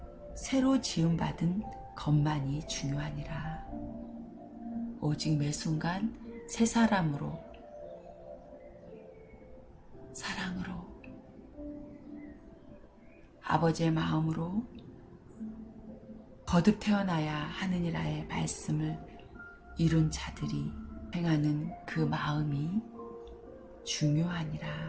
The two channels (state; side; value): identical; both; correlation 1.00